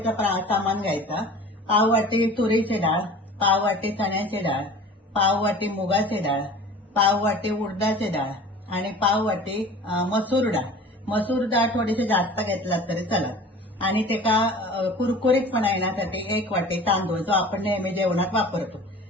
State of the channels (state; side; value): normal; both; correlation 0.42